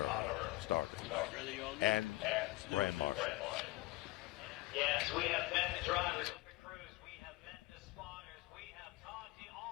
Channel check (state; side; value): quieter; right; 20.1 dB